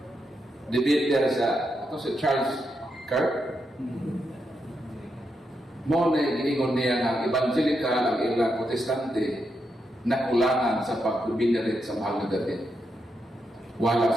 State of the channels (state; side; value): normal; both; correlation 0.83